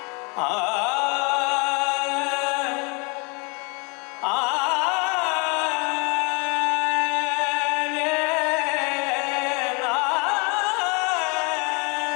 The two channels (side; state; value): right; quieter; 32.0 dB